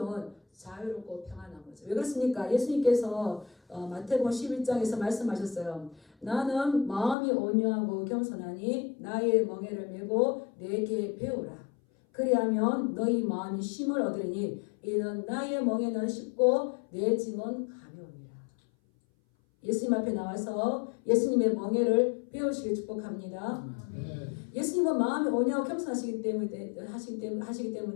자유롭고 평안한 거죠. 왜 그렇습니까? 예수님께서 마태복음 11장에서 말씀하셨어요. 나는 마음이 온유하고 겸손하니 나의 멍에를 메고 내게 배우라. 그리하면 너희 마음이 쉼을 얻으리니 이는 나의 멍에는 쉽고 내 짐은 가벼우니라. 예수님 앞에 나와서 예수님의 멍에를 배우시길 축복합니다. 예수님은 마음이 온유하고 겸손하시기 때문에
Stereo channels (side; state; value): right; drops out; at 7.2 s